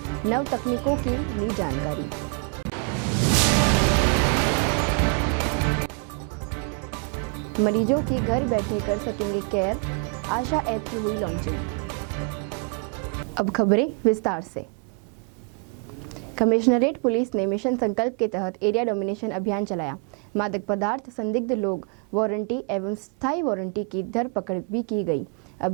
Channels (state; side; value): quieter; left; 37.9 dB